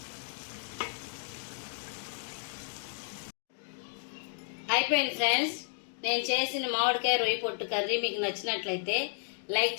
అయిపోయింది ఫ్రెండ్స్. నేను చేసిన మామిడికాయ రొయ్య పొట్టు కర్రీ మీకు నచ్చినట్లయితే లైక్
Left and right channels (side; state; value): right; silent; digital silence